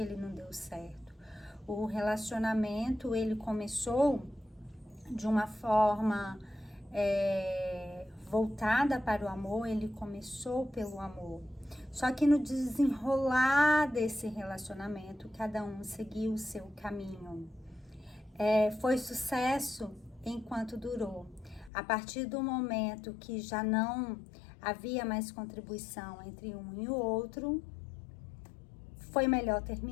não deu certo. O relacionamento, ele começou de uma forma voltada para o amor, ele começou pelo amor. Só que no desenrolar desse relacionamento, cada um seguiu o seu caminho. Foi sucesso enquanto durou. A partir do momento que já não havia mais contribuição entre um e o outro, foi melhor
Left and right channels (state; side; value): drops out; right; at 21.7 s